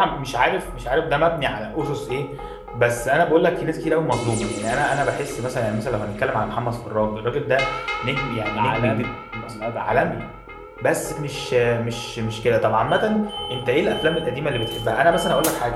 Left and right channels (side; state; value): both; identical; correlation 1.00